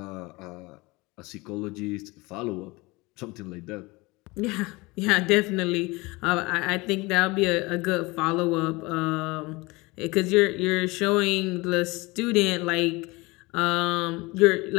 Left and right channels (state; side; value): quieter; right; 23.6 dB